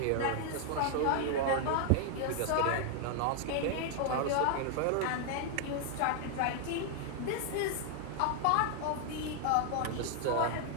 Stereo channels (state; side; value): different; both; correlation 0.00